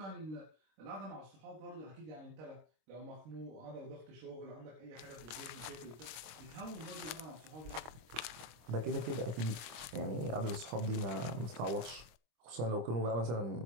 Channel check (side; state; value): left; late; 25 ms